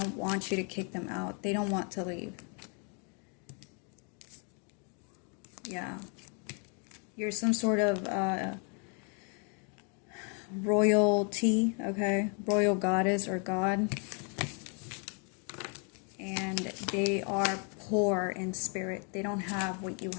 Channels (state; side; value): quieter; right; 38.3 dB